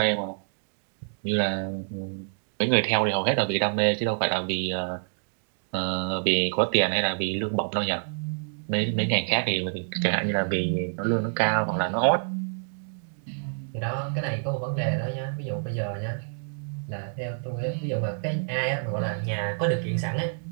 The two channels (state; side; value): silent; left; digital silence